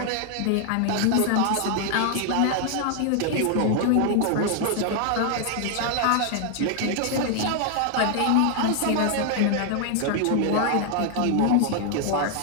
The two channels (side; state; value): both; different; correlation 0.00